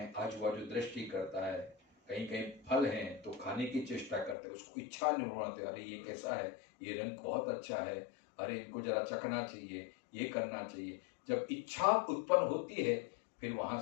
आजू बाजू दृष्टि करता है, कहीं कहीं फल है तो खाने की चेष्टा करते हैं, उसको इच्छा नहीं होती, अरे ये कैसा है, ये रंग बहुत अच्छा है, अरे इनको जरा चखना चाहिए, ये करना चाहिए। जब इच्छा उत्पन्न होती है फिर वहां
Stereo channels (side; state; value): right; drops out; at 4.4 s